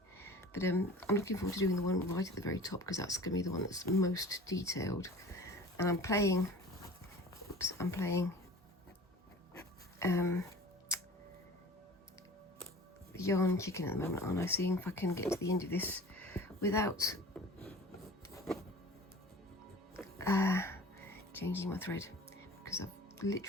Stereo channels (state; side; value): normal; both; correlation 0.41